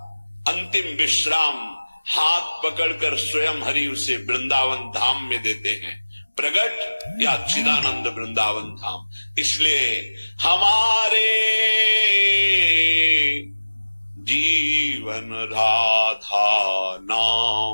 अंतिम विश्राम हाथ पकड़कर स्वयं हरि उसे वृंदावन धाम में देते हैं, प्रगट या चिदानंद वृंदावन धाम। इसलिए हमारे जीवन राधा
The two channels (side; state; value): both; inverted; correlation -1.00